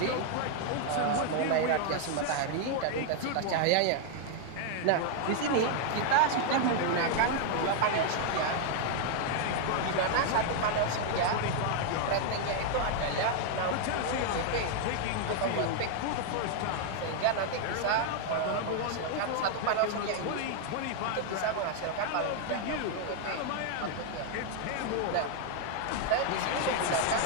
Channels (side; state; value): both; different; correlation 0.00